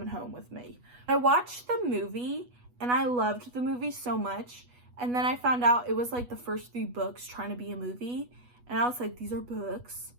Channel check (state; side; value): late; left; 8.2 ms